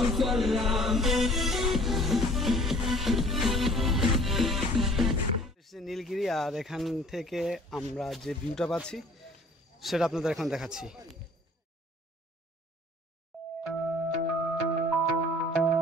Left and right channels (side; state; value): both; normal; correlation 0.52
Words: হচ্ছে নীলগিরি, আর এখান থেকে আমরা যে ভিউটা পাচ্ছি সেটা আপনাদের এখন দেখাচ্ছি।